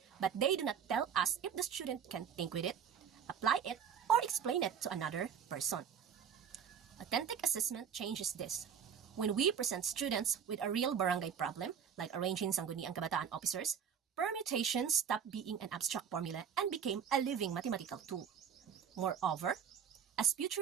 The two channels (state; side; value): quieter; left; 7.7 dB